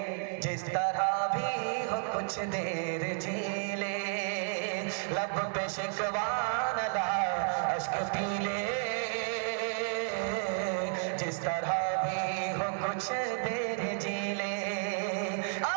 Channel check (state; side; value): silent; left; 56 dB below the other